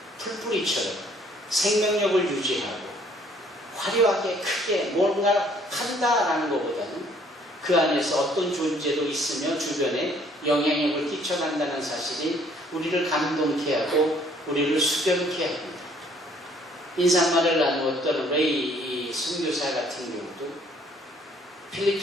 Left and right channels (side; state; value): both; normal; correlation 0.61